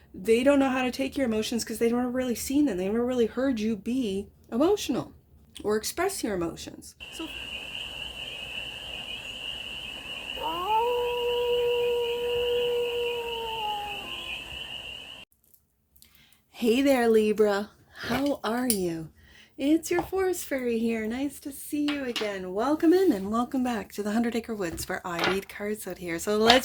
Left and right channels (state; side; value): identical; both; correlation 1.00